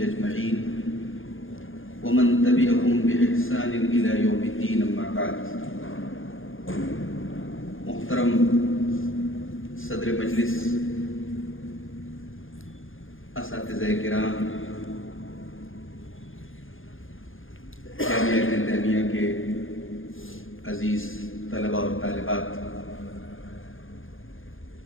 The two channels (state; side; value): late; right; 0.59 ms